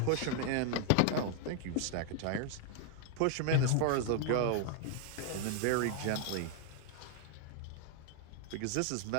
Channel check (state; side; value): different; both; correlation 0.00